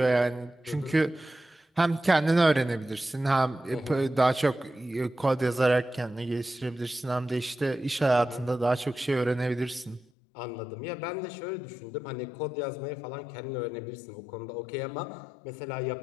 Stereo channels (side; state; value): right; drops out; at 10.1 s